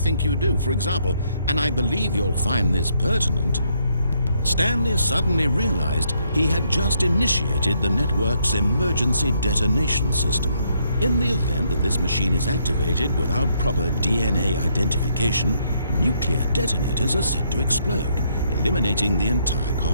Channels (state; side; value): inverted; both; correlation -0.72